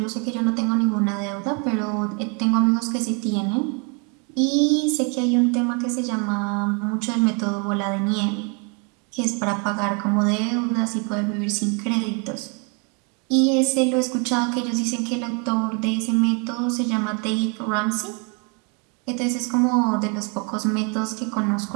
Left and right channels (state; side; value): quieter; left; 35.0 dB